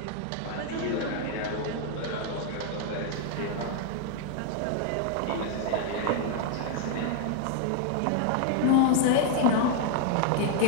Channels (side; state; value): both; different; correlation 0.00